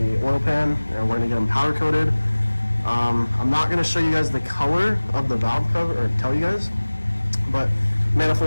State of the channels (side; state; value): both; inverted; correlation -1.00